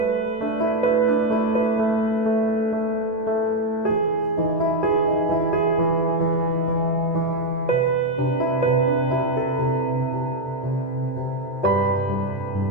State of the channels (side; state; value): both; normal; correlation 0.07